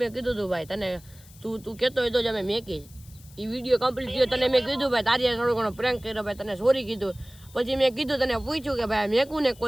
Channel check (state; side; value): noise; left; hiss, 24 dB below the sound